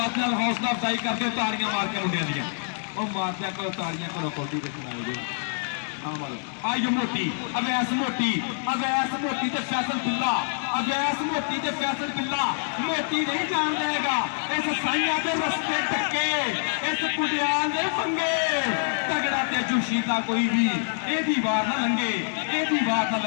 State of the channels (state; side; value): silent; right; 57 dB below the other